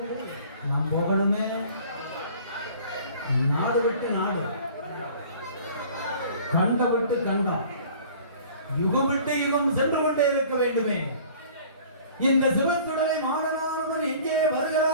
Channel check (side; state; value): both; inverted; correlation -0.48